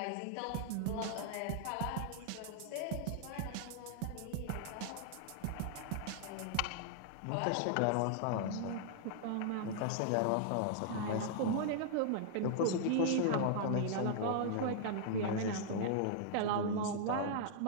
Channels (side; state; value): both; different; correlation -0.01